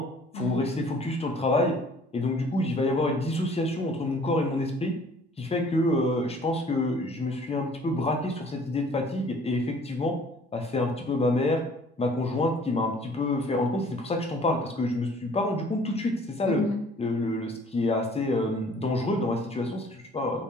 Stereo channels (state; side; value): normal; both; correlation 0.54